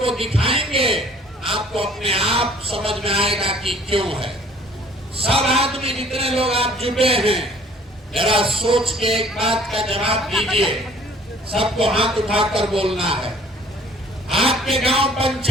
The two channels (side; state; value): both; normal; correlation 0.54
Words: दिखाएंगे, आपको अपने आप समझ में आएगा कि क्यों है। सब आदमी जितने लोग आप जुटे हैं, जरा सोच के एक बात का जवाब दीजिए। सबको हाथ उठाकर बोलना है। आपके गांव